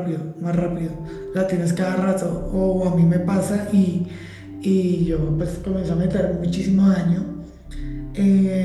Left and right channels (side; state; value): both; identical; correlation 1.00